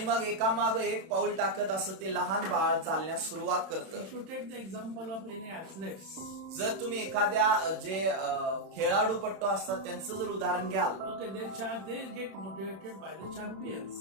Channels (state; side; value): late; left; 32 ms